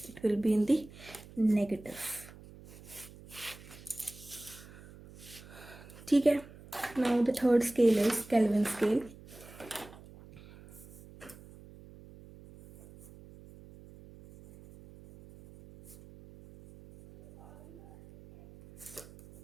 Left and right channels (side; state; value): right; noise; hum, 19 dB below the sound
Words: it will be in the negative. ठीक है। Now the third scale is Kelvin scale.